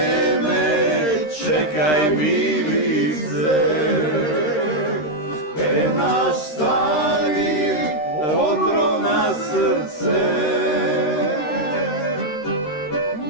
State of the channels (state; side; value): late; right; 13 ms